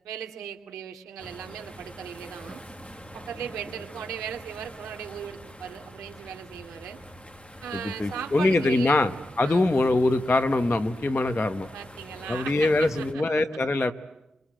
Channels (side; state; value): both; normal; correlation 0.87